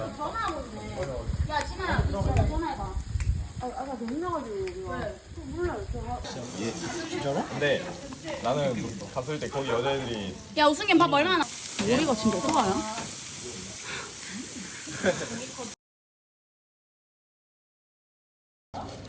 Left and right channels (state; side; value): identical; both; correlation 1.00